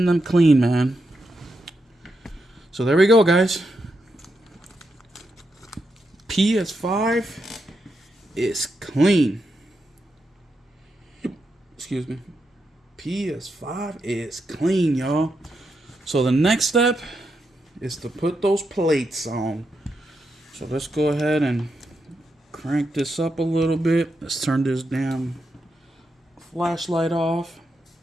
them clean, man. So there we go, guys. PS5 is clean. Excuse me. PS5 is clean, y'all. So the next step is to put those plates on. So let's go ahead and crank this up a little bit. Let's turn this damn flashlight off.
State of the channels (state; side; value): normal; both; correlation 0.84